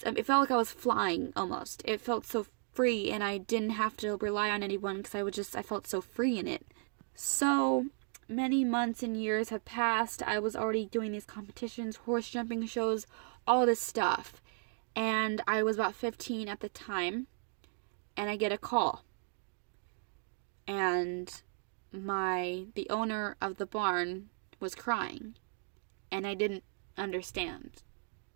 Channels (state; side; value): silent; left; 54 dB below the other